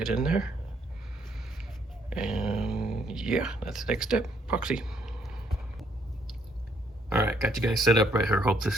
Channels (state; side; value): normal; both; correlation 0.69